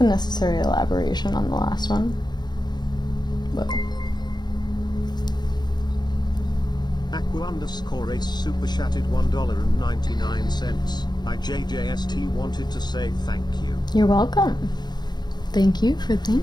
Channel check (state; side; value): late; right; 0.21 ms